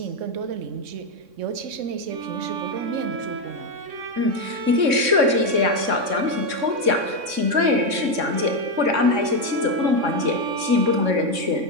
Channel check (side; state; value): left; late; 3.6 ms